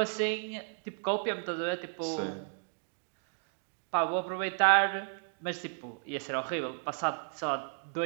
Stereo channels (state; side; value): silent; left; 55 dB below the other